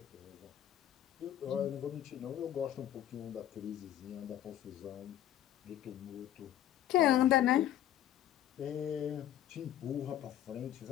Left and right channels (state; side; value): quieter; right; 11.8 dB